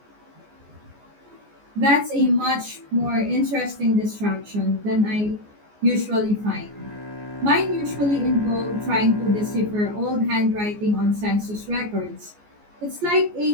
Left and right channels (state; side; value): late; left; 14 ms